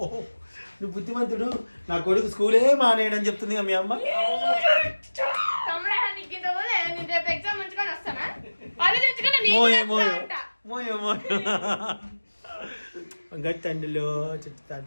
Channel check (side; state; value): both; inverted; correlation -1.00